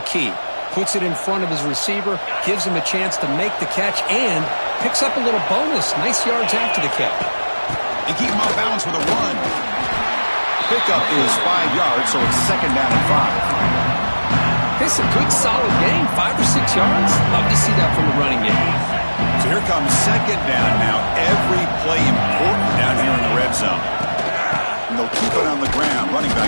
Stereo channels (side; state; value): both; inverted; correlation -1.00